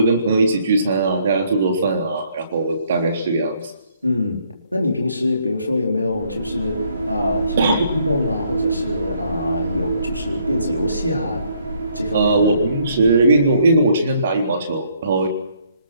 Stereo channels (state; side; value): inverted; both; correlation -0.68